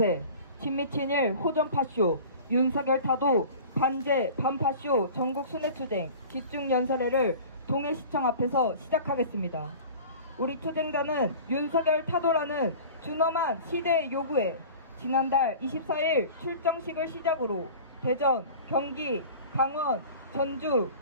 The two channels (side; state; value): both; inverted; correlation -0.40